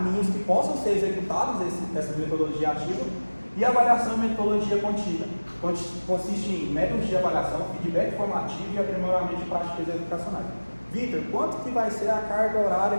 que possam ser executados essa metodologia ativa. E avaliação e metodologia contínua, consiste em métodos de avaliação, feedback formativo e aprimoramento de práticas educacionais. Vitor, quanto que vai ser a carga horária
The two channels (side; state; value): both; inverted; correlation -1.00